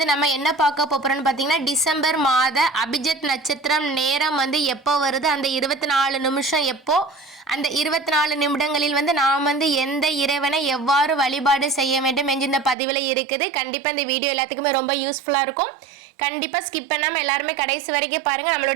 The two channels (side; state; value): left; drops out; at 12.8 s